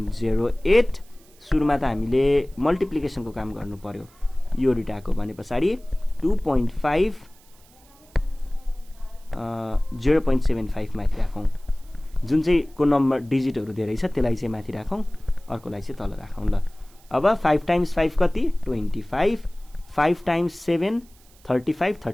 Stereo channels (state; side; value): noise; right; hiss, 28 dB below the sound